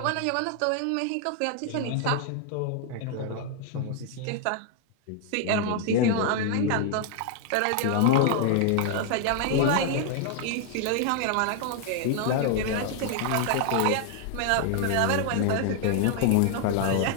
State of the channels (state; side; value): different; both; correlation 0.00